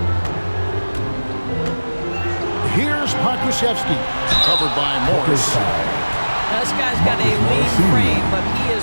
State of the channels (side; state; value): both; inverted; correlation -1.00